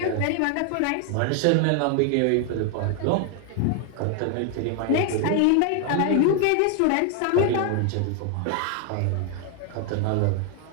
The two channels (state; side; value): different; both; correlation 0.00